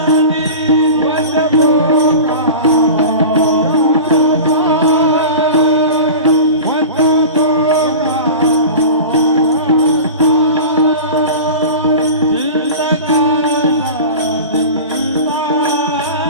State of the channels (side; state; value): both; inverted; correlation -0.33